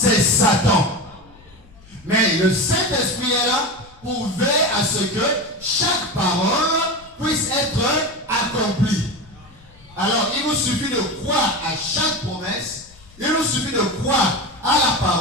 Satan. Mais le Saint-Esprit est là pour veiller à ce que chaque parole puisse être accomplie. Alors, il nous suffit de croire à chaque promesse, il nous suffit de croire à la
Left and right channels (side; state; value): left; noise; rumble, 25 dB below the sound